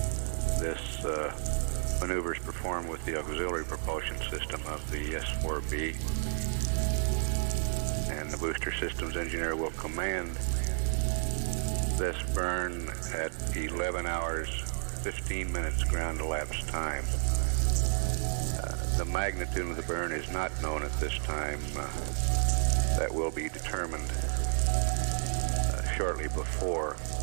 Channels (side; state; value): left; silent; digital silence